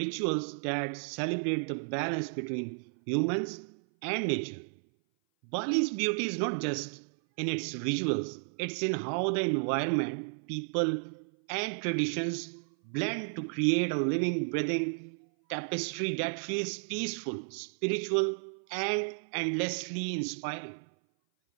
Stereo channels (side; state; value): left; silent; 56 dB below the other